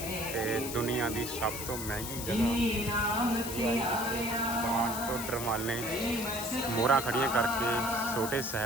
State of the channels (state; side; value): noise; left; hiss, 7 dB below the sound